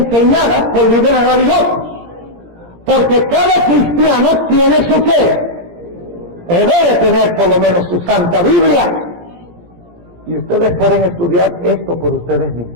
por líderes religiosos. Porque cada cristiano tiene su fe. O debe tener por lo menos su Santa Biblia. Y ustedes pueden estudiar esto por ustedes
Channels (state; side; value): late; left; 17 ms